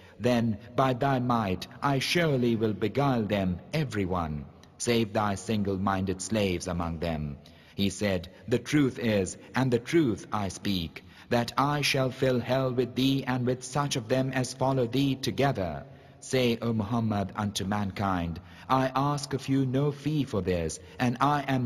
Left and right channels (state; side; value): identical; both; correlation 1.00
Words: Then by thy might I surely will beguile them, every one, save thy single-minded slaves among them. He said, The truth is, and the truth I speak, that I shall fill hell with thee and with such of them as follow thee together. Say, O Muhammad, unto mankind, I ask of you no fee for this, and I